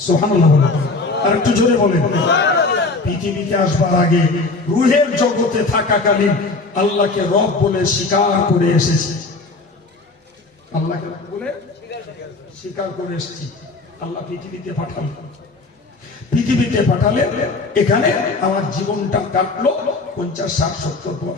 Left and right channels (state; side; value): quieter; right; 3.6 dB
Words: সুবহানাল্লাহ। আর একটু জোরে বলেন। পৃথিবীতে আসবার আগে রুহের জগতে থাকাকালীন আল্লাহকে রব বলে স্বীকার করে এসেছি। আল্লাহকে বলে স্বীকার করে এসেছি। আল্লাহ পৃথিবীতে পাঠালেন, পৃথিবীতে পাঠালে এখানে আমার জীবনটা কাটলো 50, 60, 70,